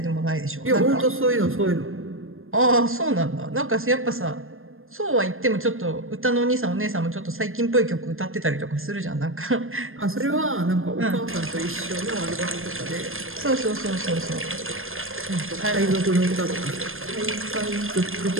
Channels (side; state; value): left; late; 0.60 ms